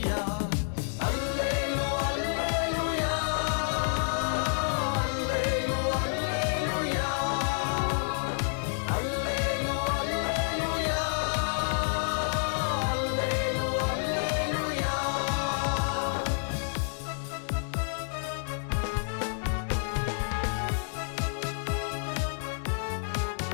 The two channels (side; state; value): right; silent; 58 dB below the other